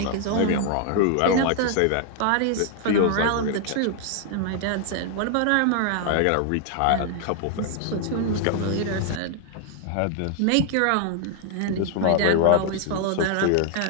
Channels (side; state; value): both; different; correlation 0.00